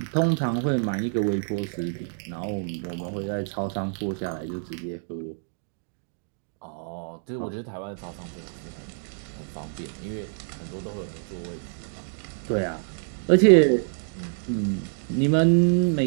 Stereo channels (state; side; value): silent; left; digital silence